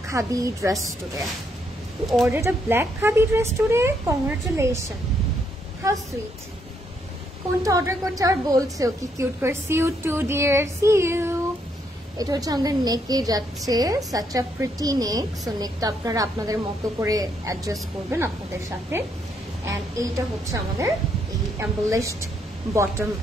khadi dress today. You ordered a black khadi dress today? Congratulations. How sweet. কোনটা অর্ডার করতে আর বলছে কি কিউট করে। See you too dear, see you. এটা হচ্ছে আমাদের নেকে যাচ্ছে, such a pretty neck. So নেকটা আপনারা আপনাদের মতো করে অ্যাডজাস্ট করবেন আপনাদের সাথে। এন্ড এইটা হচ্ছে আমাদের এই এমবলিশড বটম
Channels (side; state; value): both; normal; correlation 0.74